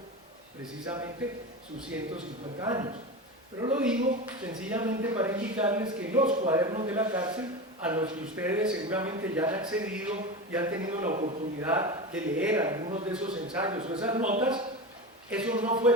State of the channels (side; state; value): both; normal; correlation 0.24